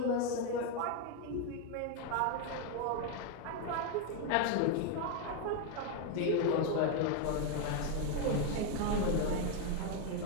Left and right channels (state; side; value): different; both; correlation 0.01